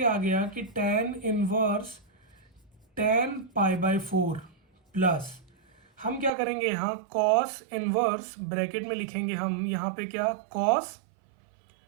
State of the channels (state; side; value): drops out; left; at 6.3 s